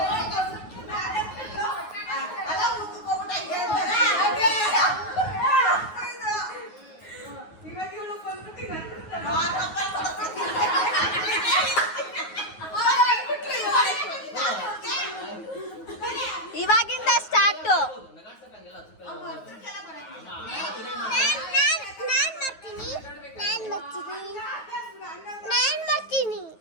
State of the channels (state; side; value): late; right; 9.4 ms